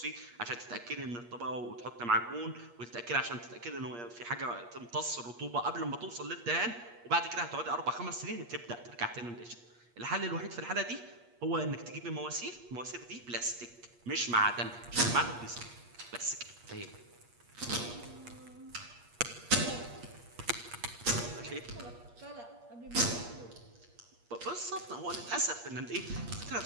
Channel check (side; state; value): left; late; 8.5 ms